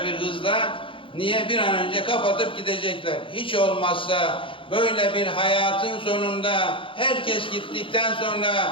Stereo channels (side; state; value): right; late; 0.25 ms